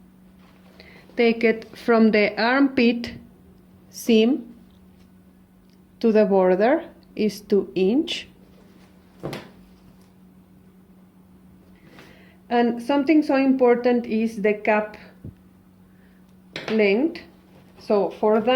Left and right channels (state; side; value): identical; both; correlation 1.00